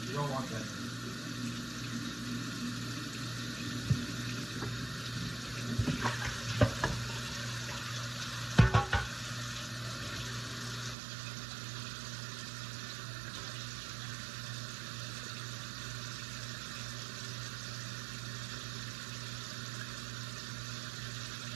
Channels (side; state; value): left; drops out; at 11.0 s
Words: You don't want that.